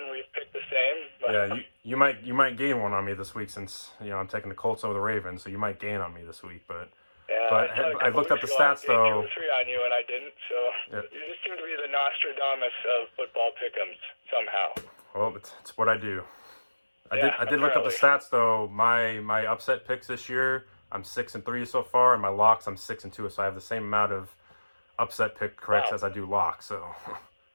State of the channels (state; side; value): inverted; both; correlation -1.00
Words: we've picked the same. Yeah, you might gain one on me this week since I'm taking the Colts over the Ravens. So you might gain on me this week, but. Yeah, but I looked up the stats though. 2 or 3 on you, and I didn't. So you just seem to be the Nostradamus of football pick'ems somehow. Well, it's what I do. I did look up the stats though. My upset picks this year, I'm 6-3 so far, and my locks I'm 6-2. So I have the same amount of upset pick corrects as I do locks. So